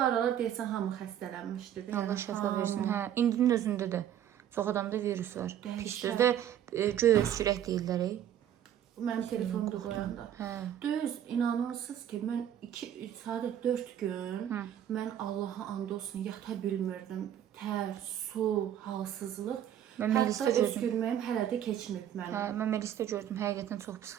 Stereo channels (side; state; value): left; quieter; 10.4 dB